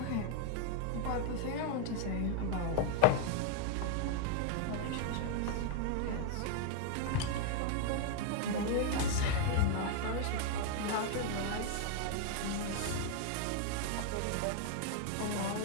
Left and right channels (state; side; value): different; both; correlation 0.00